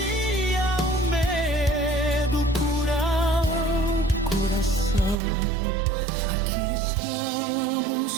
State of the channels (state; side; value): drops out; left; at 5.2 s